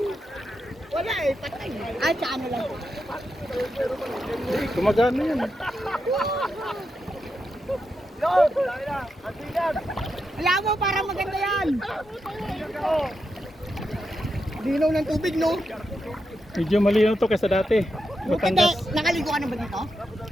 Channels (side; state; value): both; normal; correlation 0.86